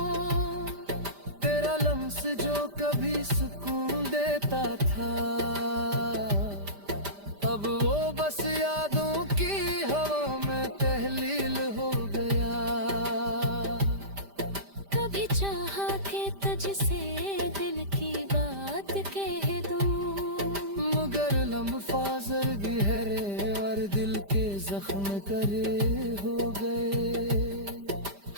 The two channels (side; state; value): left; late; 5.0 ms